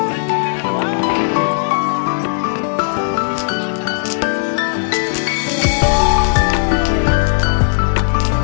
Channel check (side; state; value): right; silent; digital silence